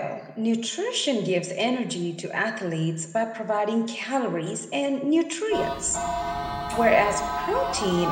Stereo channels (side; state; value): both; identical; correlation 1.00